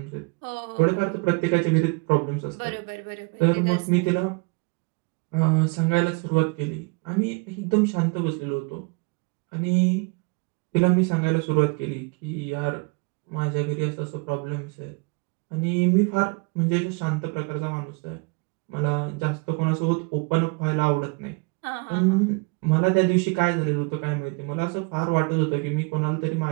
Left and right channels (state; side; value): quieter; left; 30.2 dB